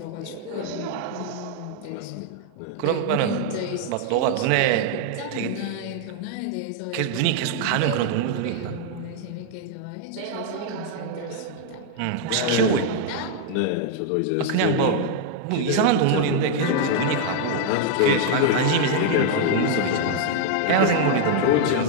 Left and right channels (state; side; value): different; both; correlation 0.00